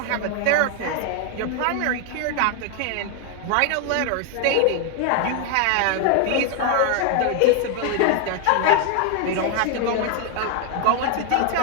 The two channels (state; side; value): different; both; correlation 0.00